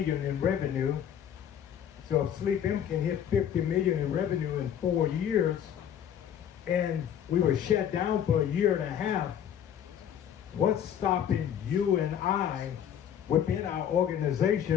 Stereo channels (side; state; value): right; quieter; 9.4 dB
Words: in revenue. So if SleepM can hit 50 million in revenue in 4 years, and we were shut down for a year and a half, what's stopping you and I within our